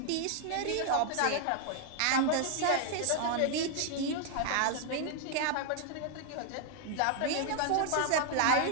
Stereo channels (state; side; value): different; both; correlation 0.00